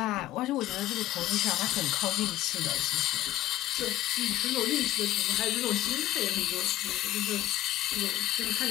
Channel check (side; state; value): right; quieter; 14.1 dB